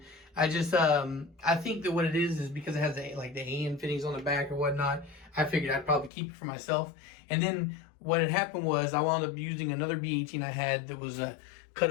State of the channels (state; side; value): drops out; right; at 6.1 s